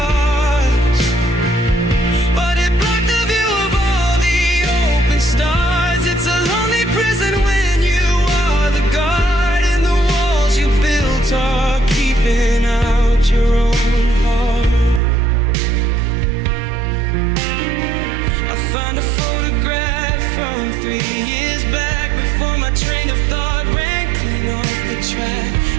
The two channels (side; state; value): left; drops out; at 15.0 s